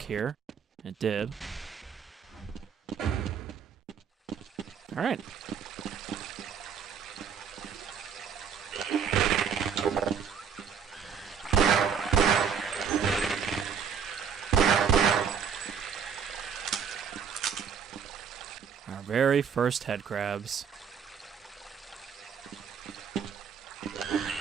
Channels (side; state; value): left; quieter; 7.1 dB